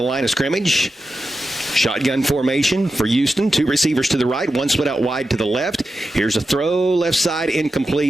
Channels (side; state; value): both; normal; correlation 0.91